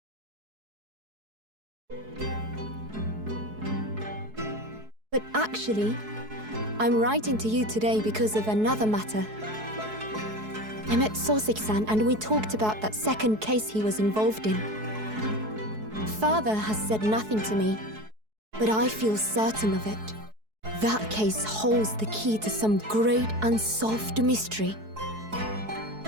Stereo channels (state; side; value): late; left; 4.7 ms